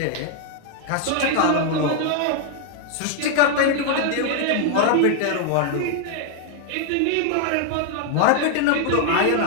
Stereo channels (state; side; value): different; both; correlation 0.00